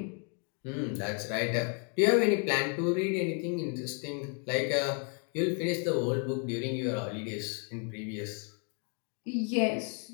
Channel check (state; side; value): quieter; right; 40.0 dB